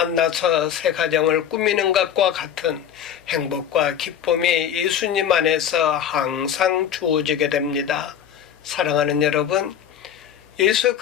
새 가정을 꾸미는 것과 같은 행복과 기쁨이 예수님 안에서 항상 주어지게 됩니다. 사랑하는 여러분, 예수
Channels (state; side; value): quieter; right; 9.2 dB